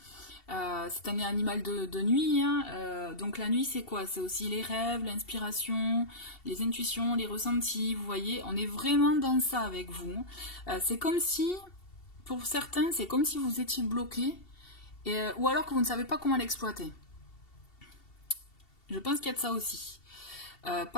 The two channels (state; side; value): late; right; 2.7 ms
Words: c'est un animal de nuit. Hein, donc la nuit, c'est quoi? C'est aussi les rêves, l'inspiration, les intuitions, les ressentis. Vous voyez, on est vraiment dans ça avec vous. C'est comme si, pour certains, c'est comme si vous étiez bloqué, ou alors que vous ne savez pas comment l'exploiter. Je pense qu'il y a de ça aussi.